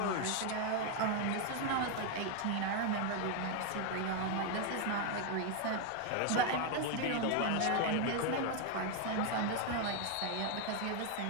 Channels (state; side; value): different; both; correlation 0.01